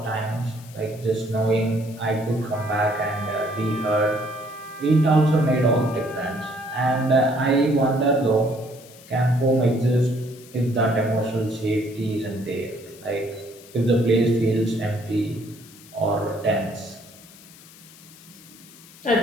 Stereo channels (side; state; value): left; noise; hiss, 21 dB below the sound